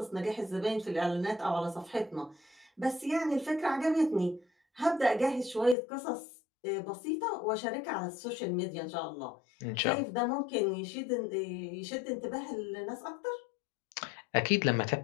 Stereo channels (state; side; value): drops out; right; at 5.8 s